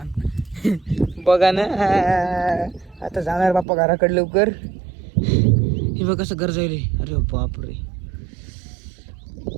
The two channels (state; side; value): drops out; left; at 3.7 s